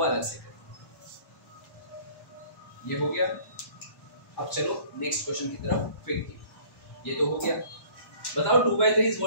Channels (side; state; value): right; late; 1.1 ms